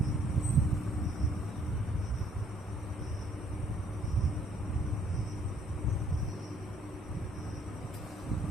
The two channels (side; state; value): both; normal; correlation 0.64